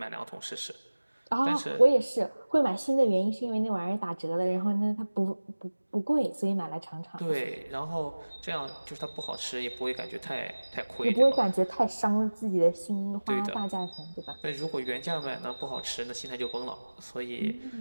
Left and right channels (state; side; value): inverted; both; correlation -1.00